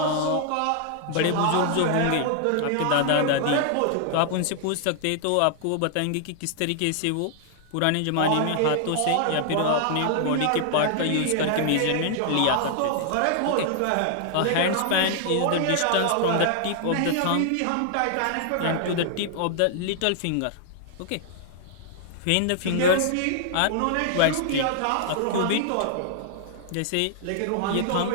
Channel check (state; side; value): different; both; correlation 0.00